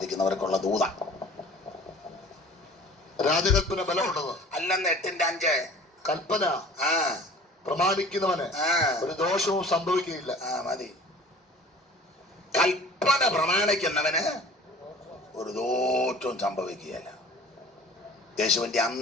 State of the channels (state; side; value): normal; both; correlation 0.46